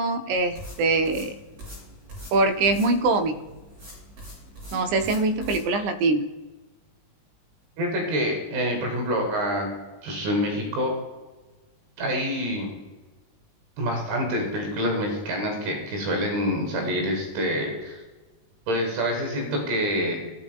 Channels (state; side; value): late; left; 20 ms